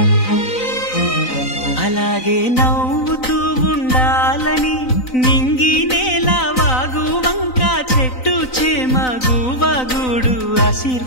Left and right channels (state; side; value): late; right; 3.9 ms